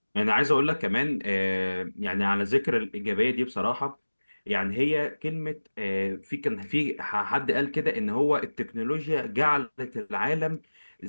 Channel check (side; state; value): both; inverted; correlation -1.00